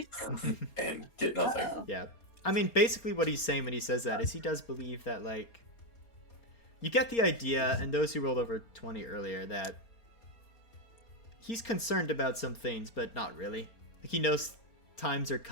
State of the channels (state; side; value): late; right; 4.3 ms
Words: and get nothing. Uh-oh. Yeah. I mean, basically what he's saying when he says that is he does believe that, like, you get the idea, and those who rolled over 20 earlier, that he's concerned about some things, but not really. Like, he knows times are